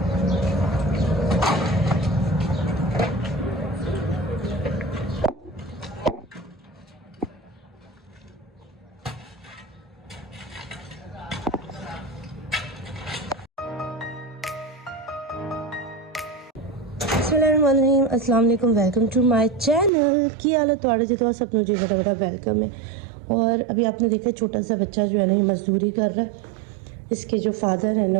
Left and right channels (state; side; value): drops out; left; at 19.9 s